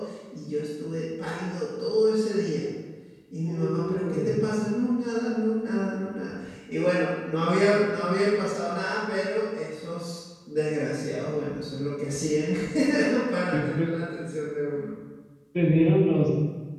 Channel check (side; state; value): both; identical; correlation 1.00